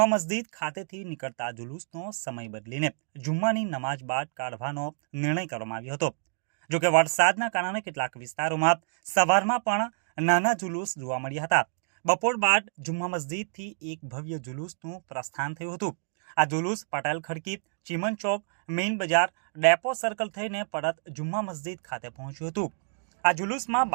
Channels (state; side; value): silent; left; digital silence